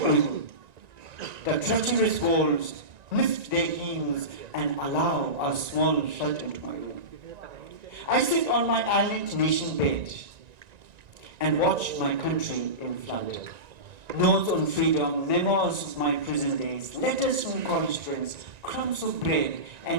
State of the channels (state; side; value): late; left; 1.9 ms